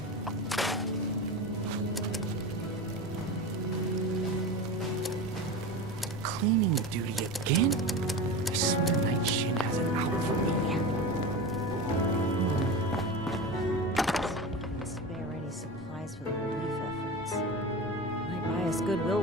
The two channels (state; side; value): normal; both; correlation 0.27